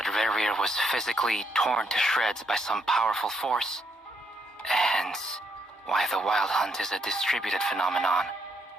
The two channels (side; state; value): both; normal; correlation 0.75